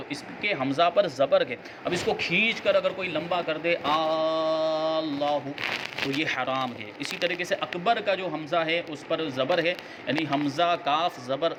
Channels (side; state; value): both; identical; correlation 1.00